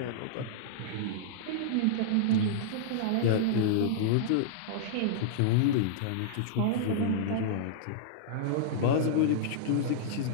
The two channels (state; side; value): different; both; correlation -0.02